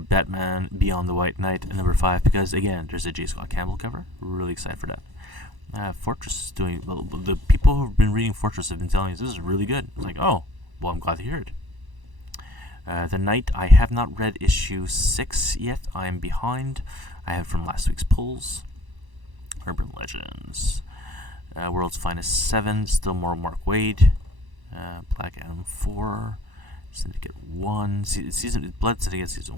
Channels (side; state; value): left; late; 1.1 ms